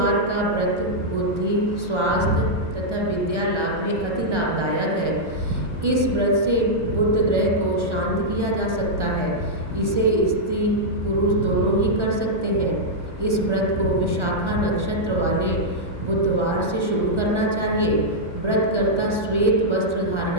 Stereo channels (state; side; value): late; left; 1.3 ms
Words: का व्रत बुद्धि, स्वास्थ्य तथा विद्या लाभ में अति लाभदायक है। इस व्रत से बुध ग्रह को शांत किया जा सकता है। इसे स्त्री पुरुष दोनों ही कर सकते हैं। इस व्रत को विशाखा नक्षत्र वाले बुधवार से शुरू करना चाहिए। व्रतकर्ता श्वेत वस्त्र धारण